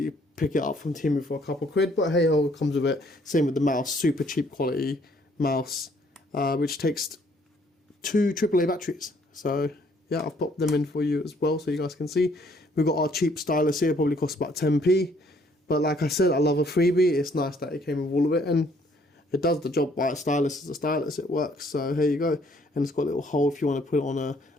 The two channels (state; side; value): normal; both; correlation 0.64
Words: pick it up from Temu for a couple quid, but hey ho, it comes with it. Same with the mouse, super cheap quality mouse, which takes 2 AAA batteries. So yeah, I've popped them in for you as well so you guys can see. We've got our cheap stylus here, probably costs about 10p, but like I said, I love a freebie. It's nice that it came with all of it, and it does the job. By a stylus is a stylus, it works. So here you go, and it's got a little hole if you want to put it on a